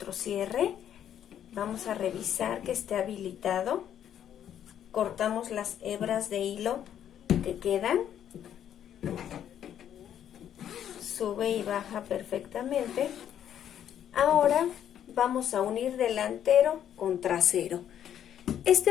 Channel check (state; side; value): quieter; right; 10.0 dB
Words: cierre. Vamos a revisar que esté habilitado. Cortamos las hebras de hilo que quedan. Sube y baja perfectamente. Ahora vamos a unir delantero con trasero.